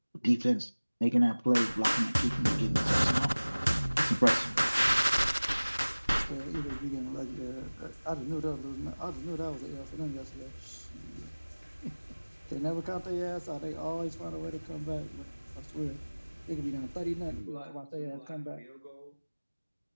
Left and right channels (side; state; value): both; inverted; correlation -1.00